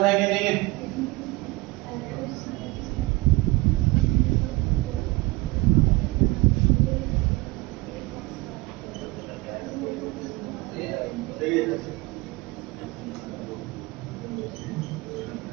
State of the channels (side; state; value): left; quieter; 22.2 dB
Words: है कि नहीं है?